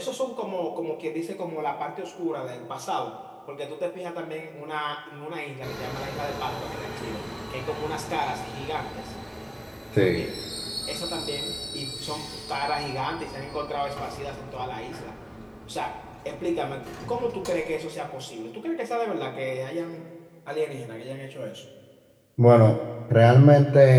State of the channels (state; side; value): identical; both; correlation 1.00